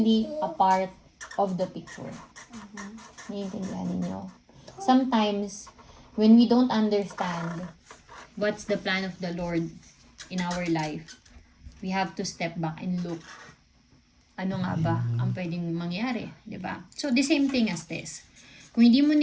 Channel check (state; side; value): identical; both; correlation 1.00